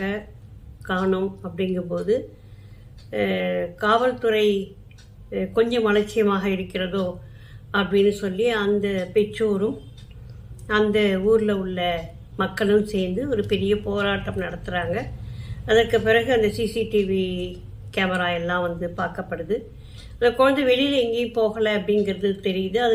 காணும். அப்படிங்கும்போது காவல்துறை கொஞ்சம் அலட்சியமாக இருக்கிறதோ அப்படின்னு சொல்லி அந்த பெற்றோரும் அந்த ஊரில் உள்ள மக்களும் சேர்ந்து ஒரு பெரிய போராட்டம் நடத்துகிறாங்க. அதற்கு பிறகு அந்த சிசிடிவி கேமரா எல்லாம் வந்து பார்க்கப்படுது. அந்த குழந்தை வெளியில் எங்கேயும் போகலை அப்படிங்கிறது தெரியுது.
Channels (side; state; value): both; identical; correlation 1.00